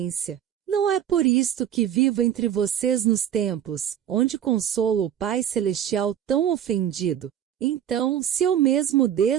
Não é por isto que vivo entre vocês nos templos, onde consolo o Pai Celestial tão ofendido. Então, se eu mesmo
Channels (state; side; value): quieter; left; 10.1 dB